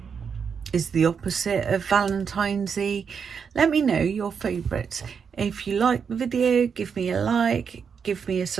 is the opposite of Valentine's-y. Let me know your favourites. If you like the video, give me a like, give me a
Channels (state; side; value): quieter; left; 6.5 dB